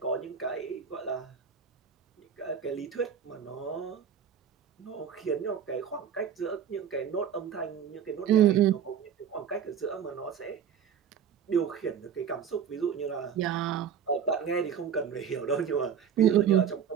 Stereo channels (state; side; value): quieter; left; 8.0 dB